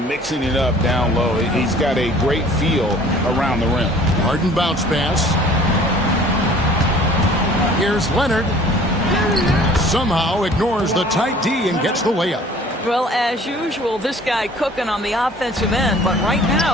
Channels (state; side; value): normal; both; correlation 0.51